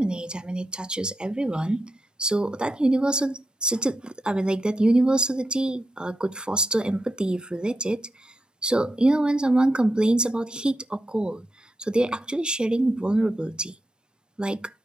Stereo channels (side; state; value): both; normal; correlation 0.87